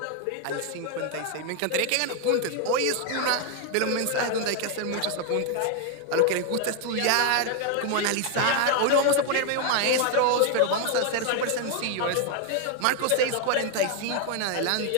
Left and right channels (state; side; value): different; both; correlation 0.00